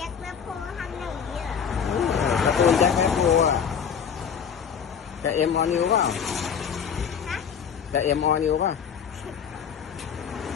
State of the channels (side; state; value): right; quieter; 7.3 dB